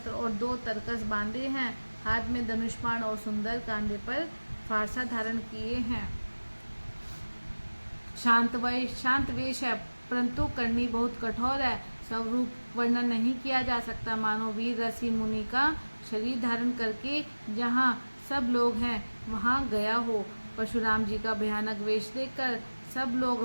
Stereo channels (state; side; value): inverted; both; correlation -1.00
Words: और 2 तरकस बांधे हैं, हाथ में धनुष्बाण और सुंदर कांधे पर फारसा धारण किए हैं। शांत वेश है, परंतु करनी बहुत कठोर है। स्वरूप वर्णन नहीं किया जा सकता, मानो वीर ऋषि मुनि का शरीर धारण करके जहाँ सब लोग हैं वहाँ गया हो। परशुराम जी का भयानक वेश देखकर सब लोग